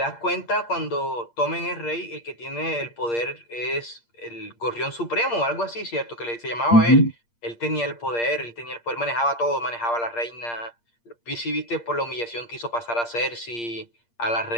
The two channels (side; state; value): right; late; 8.6 ms